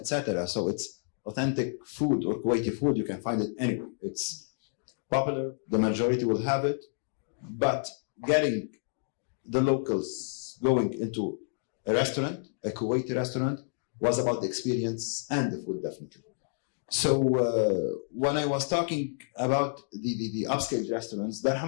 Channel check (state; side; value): silent; right; digital silence